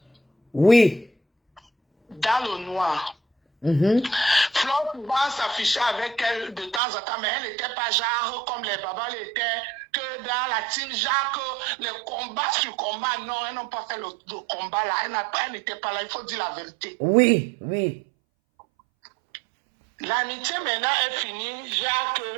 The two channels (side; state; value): left; drops out; at 6.8 s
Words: Oui. Dans le noir. Flore pouvait s'afficher avec elle de temps en temps, mais elle n'était pas genre comme les babas l'étaient, que dans la team Jacques, les combats sur combat, non, elles n'ont pas fait le combat là, elle n'était pas là, il faut dire la vérité. Oui. L'amitié maintenant est finie, Jacques,